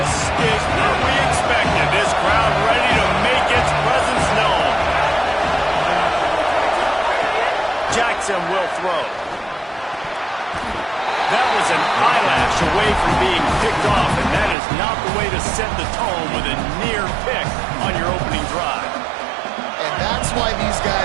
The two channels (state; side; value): drops out; left; at 14.6 s